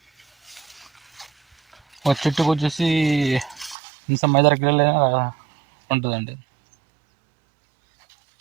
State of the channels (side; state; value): left; drops out; at 3.8 s